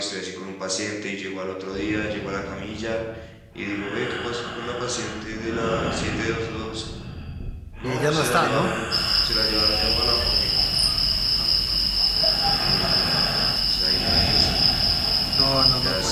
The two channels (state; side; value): identical; both; correlation 1.00